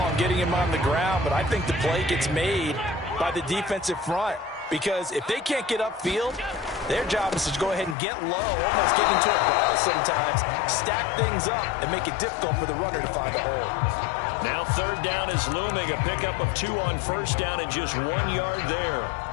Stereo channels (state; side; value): drops out; right; at 8.0 s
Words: and getting him on the ground. But I think the play gets made by the defensive front. Because if they can't get upfield, their job is to go ahead and get low, almost get into a ball sometimes, stack things up, and make it difficult for the runner to find a hole. Now 3rd down is looming. A pickup of 2 on 1st down and just 1 yard there.